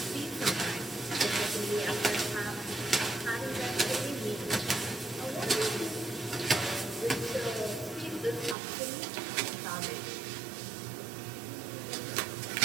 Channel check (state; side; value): drops out; left; at 8.6 s